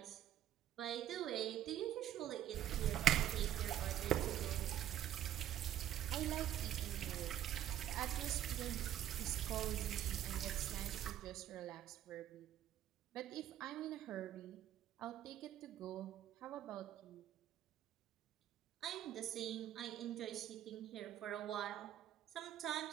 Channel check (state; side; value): quieter; left; 11.6 dB